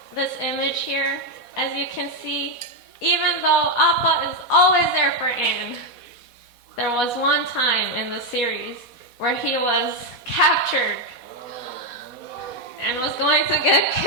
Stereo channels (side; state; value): right; late; 4.1 ms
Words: this image here. As you can see, even though Appa is always there for Aang, there was one time in the series where he was captured and was going to get